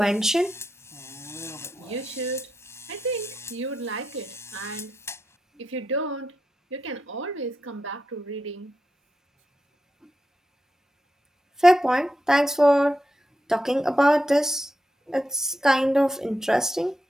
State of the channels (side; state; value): both; normal; correlation 0.86